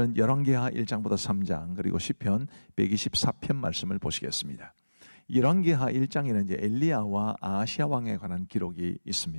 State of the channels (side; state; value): both; inverted; correlation -1.00